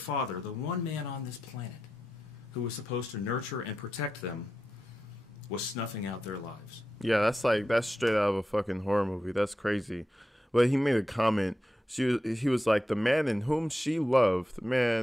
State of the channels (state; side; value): normal; both; correlation 0.89